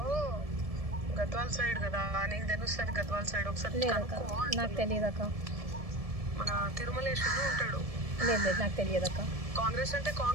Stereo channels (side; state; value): left; late; 1.7 ms